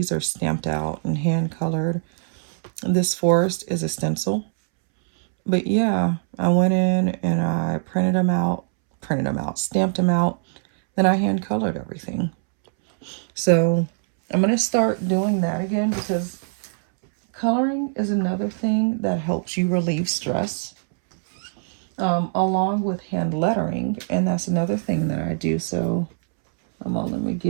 are stamped out and hand colored. This forest is a stencil. But yeah, I went in and I printed them out, stamped them out. Then I hand colored everything. So I'm going to start doing that again because coloring is another thing that helps you relieve stress. Along with hand lettering. And that's another thing that I do. So let me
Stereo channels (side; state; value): left; silent; 64 dB below the other